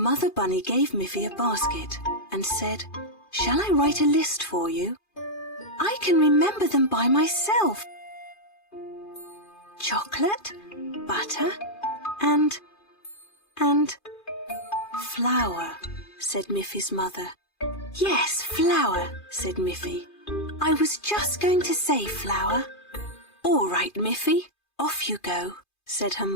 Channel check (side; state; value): right; late; 2.4 ms